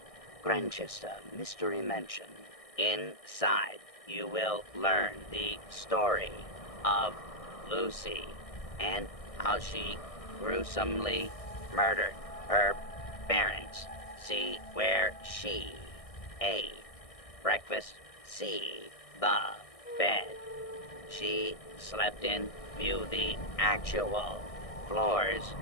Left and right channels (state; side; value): late; right; 1.6 ms